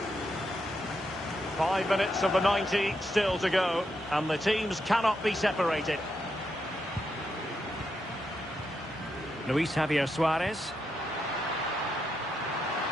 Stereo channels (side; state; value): both; normal; correlation 0.82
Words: 5 minutes of the 90 still to go, and the teams cannot be separated. Luis Javier Suarez.